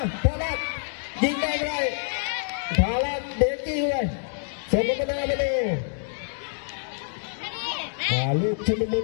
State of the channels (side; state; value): right; silent; digital silence